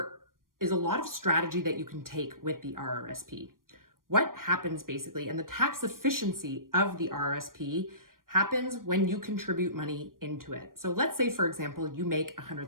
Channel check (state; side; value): late; left; 0.91 ms